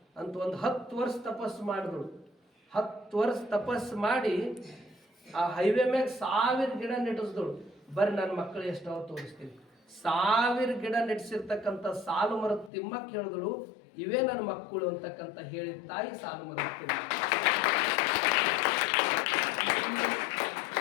ಅಂತ ಒಂದು 10 ವರ್ಷ ತಪಸ್ಸು ಮಾಡಿದ್ರು. 10 ವರ್ಷ ತಪಸ್ಸು ಮಾಡಿ ಆ ಹೈವೇ ಮ್ಯಾಗ 1000 ಗಿಡ ನೆಟ್ಟಿಸಿದಳು. ಬರ್ರಿ ನನ್ನ ಮಕ್ಕಳು ಎಷ್ಟವ ತೋರಿಸ್ತೀನಿ. 1000 ಗಿಡ ನೆಟ್ಟಿಸಿರ್ತಕ್ಕಂಥ ಸಾಲು ಮರದ ತಿಮ್ಮಕ್ಕೆ ಹೇಳಿದಳು, ಇವೇ ನನ್ನ ಮಕ್ಕಳು ಅಂತಕ್ಕಂಥ ಹೇಳಿದ ತಾಯಿ ಸಾಲು ಮರದ ತಿಮ್ಮ.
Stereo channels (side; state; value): right; drops out; at 12.7 s